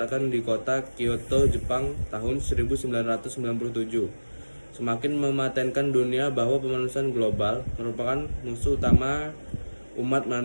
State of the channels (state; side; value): inverted; both; correlation -1.00